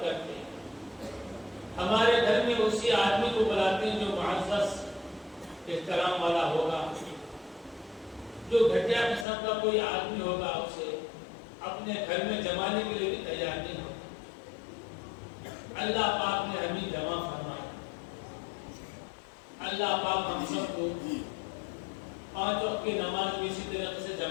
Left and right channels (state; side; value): drops out; right; at 9.2 s